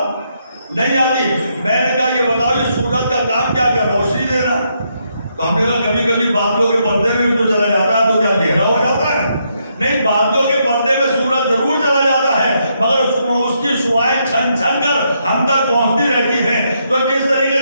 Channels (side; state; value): both; inverted; correlation -0.77